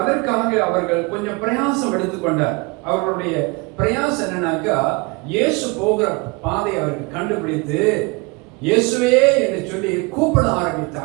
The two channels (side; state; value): left; quieter; 27.8 dB